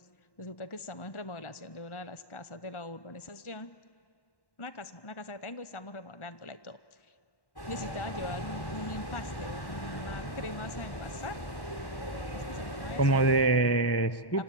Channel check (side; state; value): right; late; 1.1 ms